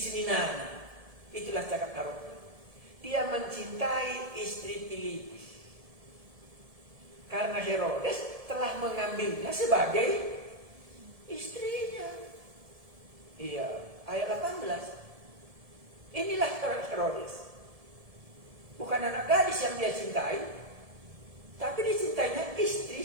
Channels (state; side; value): late; left; 1.7 ms